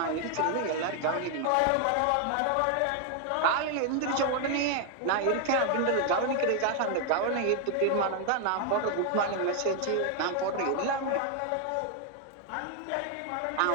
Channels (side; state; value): both; different; correlation 0.00